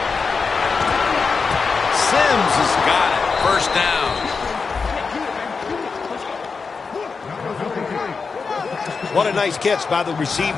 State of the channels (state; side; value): quieter; right; 4.9 dB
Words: Sims has got it. 1st down. What a nice catch by the receiver.